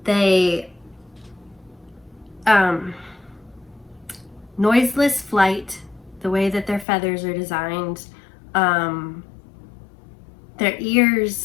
They noiseless flight, the way that their feathers are designed, their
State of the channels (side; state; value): right; drops out; at 6.9 s